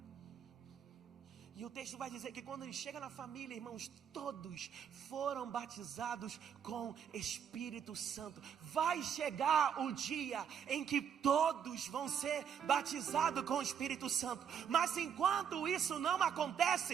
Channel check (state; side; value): quieter; left; 8.1 dB